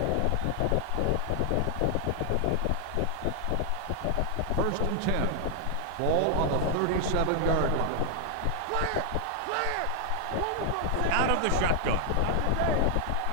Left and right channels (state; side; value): different; both; correlation 0.00